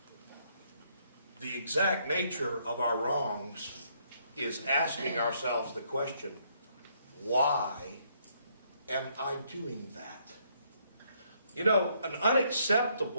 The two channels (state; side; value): inverted; both; correlation -0.71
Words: The exact nature of our wrongs is asking ourselves the question, why am I doing that? You know, an